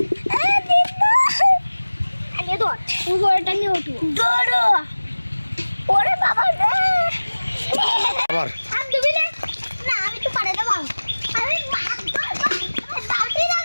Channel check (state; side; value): inverted; both; correlation -1.00